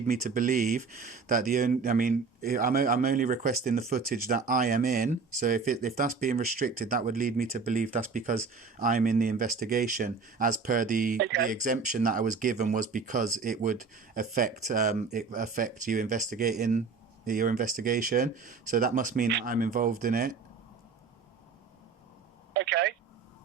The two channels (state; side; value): quieter; left; 4.9 dB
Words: me to believe that I'm only requesting the footage that I am in. So if that's being restricted, that would lead me to believe that's because I'm in the investigation, as per the exemption that I was given was because it would affect you investigating your investigation. So that must mean that I'm involved in it. Okay.